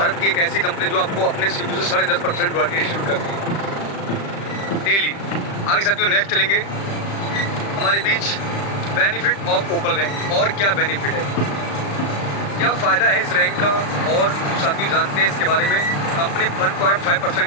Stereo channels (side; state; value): right; late; 35 ms